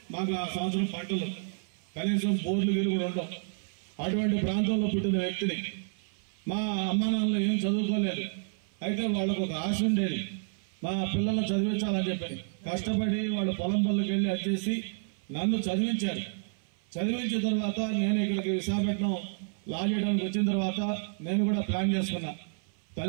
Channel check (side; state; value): left; silent; 58 dB below the other